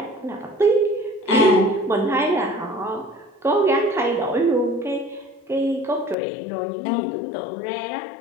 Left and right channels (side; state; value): right; drops out; at 6.2 s